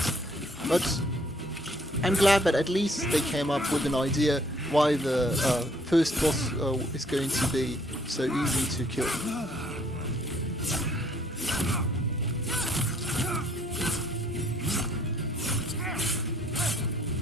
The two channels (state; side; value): normal; both; correlation 0.64